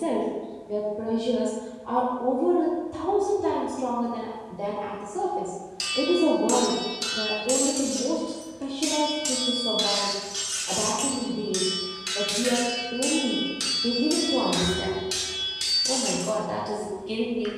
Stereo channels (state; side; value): identical; both; correlation 1.00